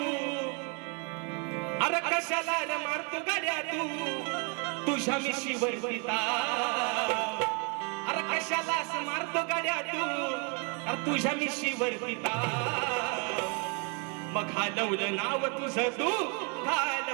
अरे कशाला मारतो गाड्या तू तुझ्या मिशीवर पिता, अरे कशाला मारतो गाड्या तू अरे तुझ्या मिशीवर पिता. मग घालवलं नाव तुझं तू,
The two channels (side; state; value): left; quieter; 34.3 dB